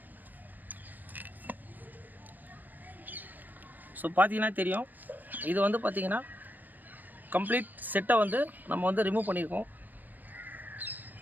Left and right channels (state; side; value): late; left; 0.088 ms